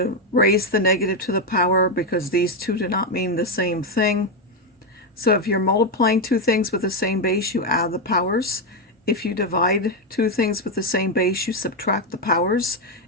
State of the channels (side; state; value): both; normal; correlation 0.06